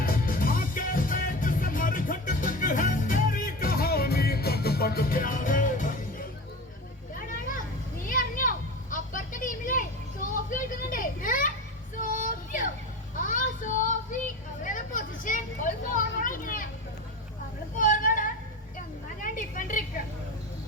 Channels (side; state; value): both; normal; correlation 0.28